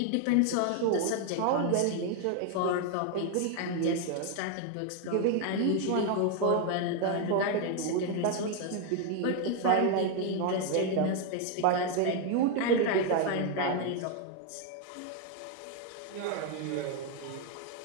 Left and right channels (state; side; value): different; both; correlation 0.01